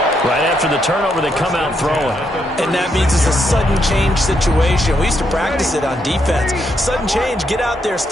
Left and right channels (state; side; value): normal; both; correlation 0.78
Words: Right after the turnover, they come out throwing. And that means it's a sudden change situation. We used to practice it on defense. Sudden change, get out there,